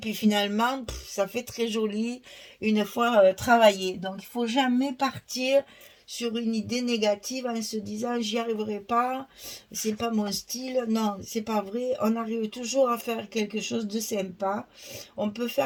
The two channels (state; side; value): identical; both; correlation 1.00